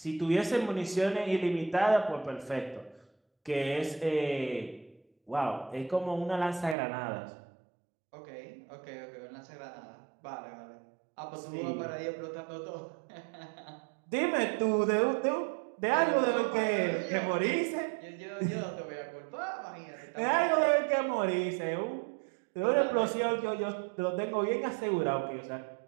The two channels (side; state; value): left; drops out; at 6.8 s